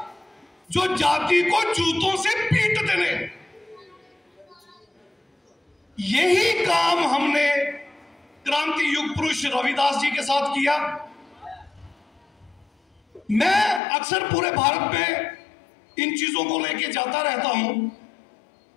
जो जाति को जूतों से पीटते ने। यही काम हमने क्रांति युग पुरुष रविदास जी के साथ किया। मैं अक्सर पूरे भारत में इन चीजों को लेके जाता रहता हूं।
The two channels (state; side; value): drops out; right; at 13.8 s